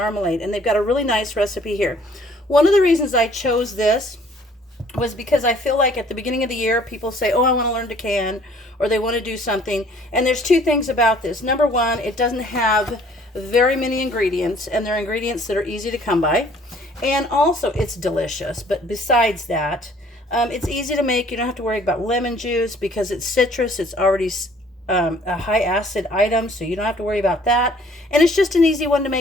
and they've got a really nice recipe here. One of the reasons I chose this was because I feel like at the beginning of the year, people say, oh, I want to learn to can, or they want to do something. And there's two things about this. Number one, it doesn't have very many ingredients, and they're ingredients that are easy to come by. And also, it's delicious. But besides that, it's easy to make. You don't have to worry about lemon juice because it's citrus. It's already a high acid item, so you don't have to worry about that. And it's just an easy one to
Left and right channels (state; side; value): normal; both; correlation 0.57